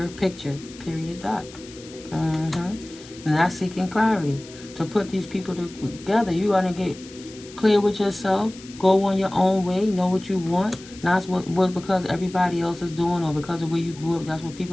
picture. Period. Dot. And that's seeking clarity. To put these people together, you got to get clear with yourself. Go on your own way. Know what you want. Not what because everybody else is doing, or because of where you grew up. That's what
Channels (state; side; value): noise; left; hiss, 19 dB below the sound